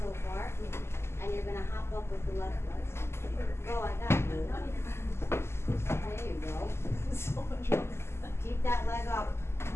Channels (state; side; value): late; right; 0.12 ms